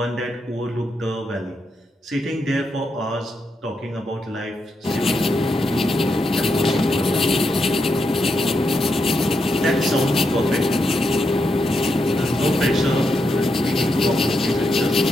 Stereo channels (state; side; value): normal; both; correlation 0.83